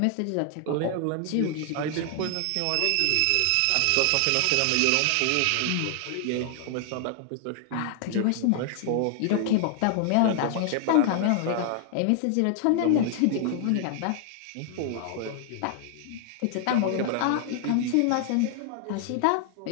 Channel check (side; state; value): both; different; correlation 0.00